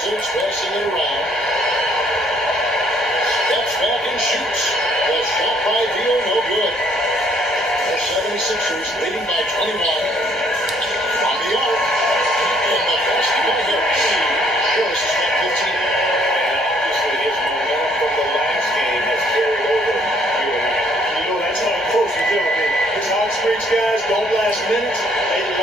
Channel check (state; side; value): normal; both; correlation 0.64